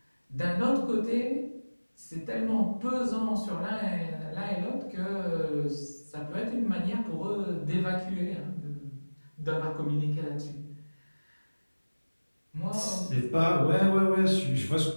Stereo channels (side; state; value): both; inverted; correlation -1.00